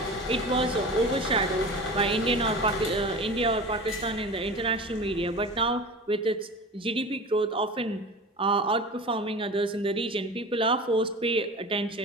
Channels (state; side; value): normal; both; correlation 0.34